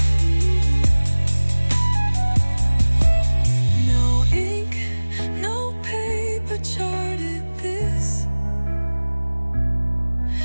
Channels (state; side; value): inverted; both; correlation -1.00